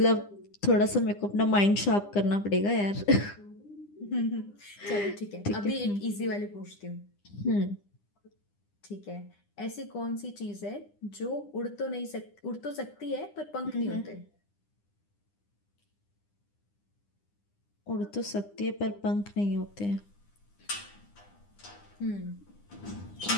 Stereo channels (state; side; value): late; right; 9.9 ms